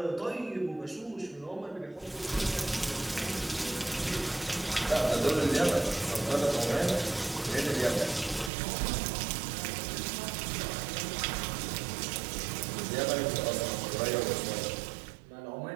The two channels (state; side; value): drops out; left; at 8.5 s